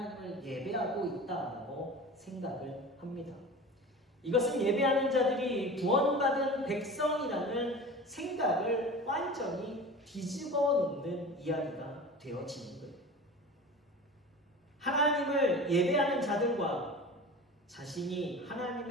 예배하고 있다고 생각을 합니다. 이것은 예배하는 자들이 구원받은 백성이라는 생각을 완전히 뒤집어 놓는 이야기가 되어지는 거예요. 하나님을 예배하는 자들과 자신이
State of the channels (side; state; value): both; normal; correlation 0.35